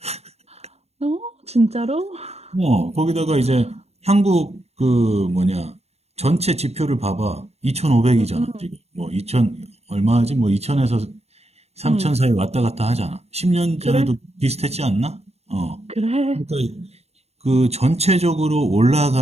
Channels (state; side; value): late; left; 0.30 ms